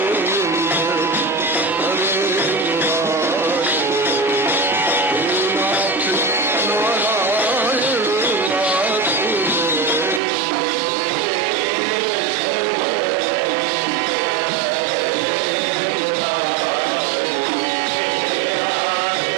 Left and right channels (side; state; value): left; drops out; at 10.2 s